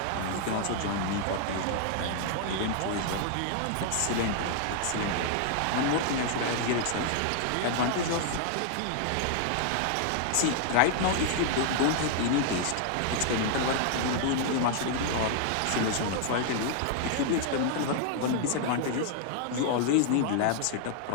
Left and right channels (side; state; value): both; different; correlation -0.01